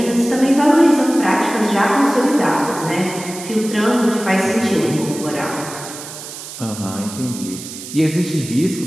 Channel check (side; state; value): right; noise; hiss, 12 dB below the sound